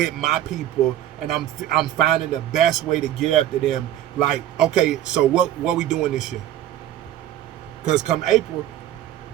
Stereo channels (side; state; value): left; quieter; 12.0 dB